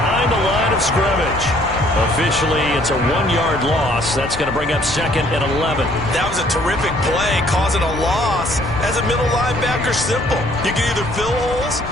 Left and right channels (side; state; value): left; noise; rumble, 13 dB below the sound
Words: the line of scrimmage. Officially, it's a 1-yard loss. That's going to bring up 2nd and 11. That was a terrific play, causing a loss. As a middle linebacker, simple. You can either fill holes